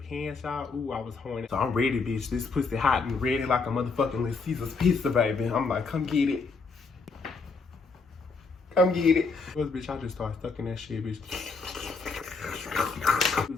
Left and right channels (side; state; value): right; quieter; 4.4 dB